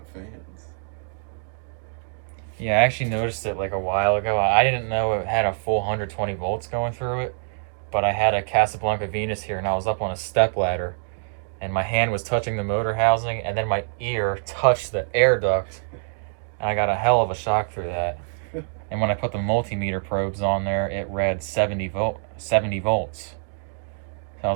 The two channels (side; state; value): left; silent; digital silence